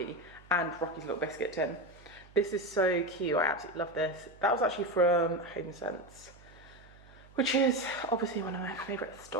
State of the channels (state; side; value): noise; right; hum, 23 dB below the sound